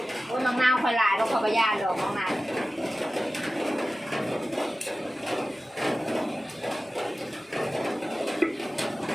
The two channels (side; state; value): both; normal; correlation 0.95